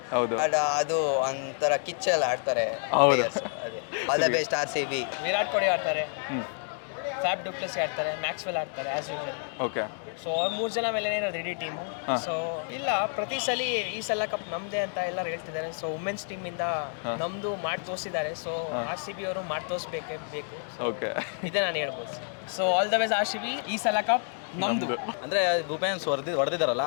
ಅದು ಒಂಥರ ಕಿಚ್ಚಲ್ಲಿ ಆಡ್ತಾರೆ ಪ್ಲೇಯರ್ಸ್. ಅದೇ all the best RCB. Virat Kohli ಆಡ್ತಾರೆ. ಫ್ಯಾಬ್ ಡುಪ್ಲೆಸ್ ಆಡ್ತಾರೆ, ಮ್ಯಾಕ್ಸ್ವೆಲ್ ಆಡ್ತಾರೆ ಆ್ಯಸ್ ಯೂಶಲ್. ಓಕೆ. ಸೊ ಅವ್ರು 3 ಜನ ಮೇಲೆ ಇರೋದು ಇಡೀ ಟೀಮು. ಸೊ ಇಲ್ಲ, ಪ್ರತಿ ಸಲ ಈ ಸಲ ಕಪ್ ನಮ್ಮದೇ ಅಂತ ಎಲ್ಲರೂ ಹೇಳ್ತಿದ್ದಾರೆ. ಸೊ ವುಮೆನ್ಸ್ ಟೀಮಿಂದ ನಮ್ಮದು ಮಾಡಿ ತೋರಿಸಿದ್ದಾರೆ. ಸೊ RCB ಅವರು ಮಾಡಿ ತೋರಿಸ್ಬೇಕೇ ಬೇಕು. ಓಕೆ. ಇದೇ ನಾನು ಹೇಳ್ಬೋದು. So all the ways RCB, ಈ ಸಲ ಕಪ್ ನಮ್ಮದು. ಅಂದರೆ ವುಮೆನ್ಸ್ ಹೊಡೆದಿದ್ದಾರಲ್ಲ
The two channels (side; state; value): right; silent; 59 dB below the other